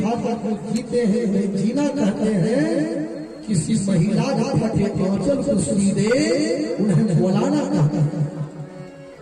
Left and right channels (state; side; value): identical; both; correlation 1.00